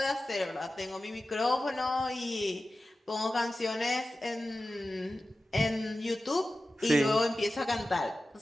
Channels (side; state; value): both; normal; correlation 0.94